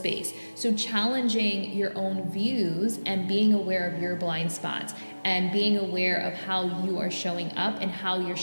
So challenging your own views and being aware of your blind spots and being aware of how you are showing up and how you're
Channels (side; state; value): both; inverted; correlation -1.00